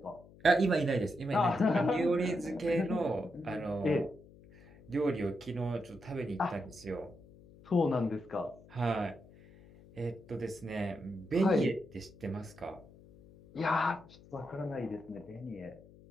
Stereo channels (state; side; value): noise; left; hum, 22 dB below the sound